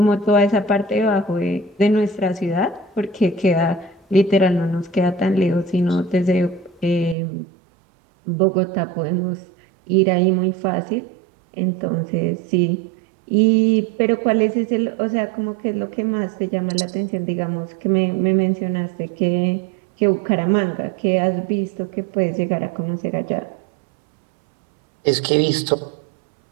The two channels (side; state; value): left; drops out; at 7.2 s